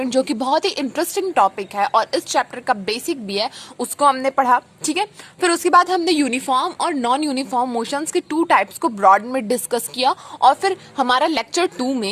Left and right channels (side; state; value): both; identical; correlation 1.00